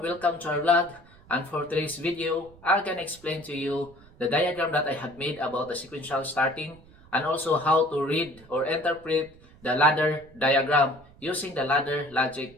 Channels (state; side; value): noise; right; rumble, 24 dB below the sound